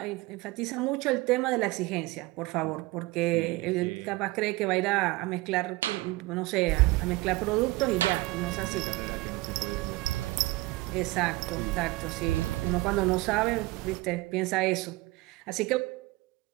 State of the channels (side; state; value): left; quieter; 20.8 dB